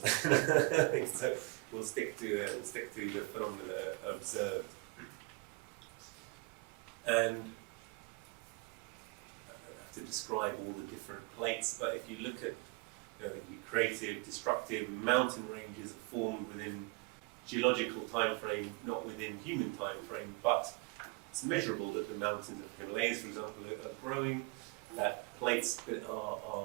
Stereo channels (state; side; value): quieter; left; 26.8 dB